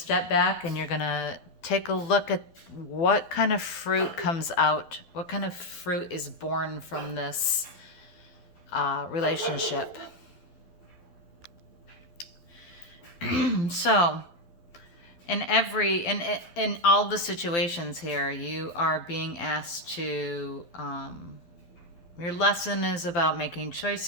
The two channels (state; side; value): late; right; 12 ms